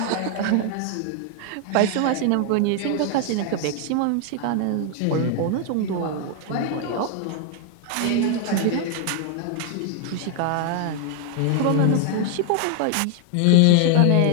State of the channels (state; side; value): different; both; correlation 0.00